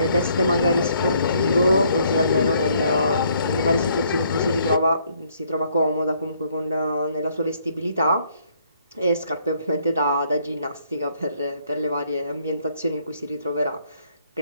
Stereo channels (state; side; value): inverted; both; correlation -0.67